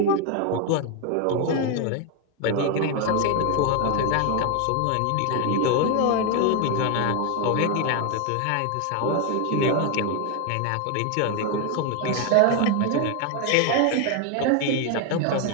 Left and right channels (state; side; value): different; both; correlation 0.01